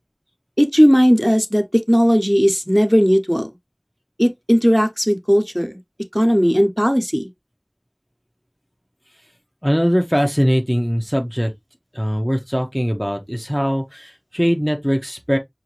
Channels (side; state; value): both; identical; correlation 1.00